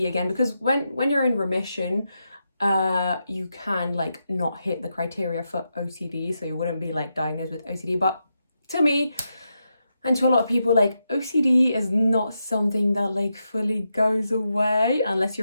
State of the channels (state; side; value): inverted; both; correlation -0.85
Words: again, because when you're in remission, you can like not hit the criteria for OCD, so you wouldn't be like diagnosed with OCD. But to me and to a lot of people, like, OCD is not something that like fully goes away unless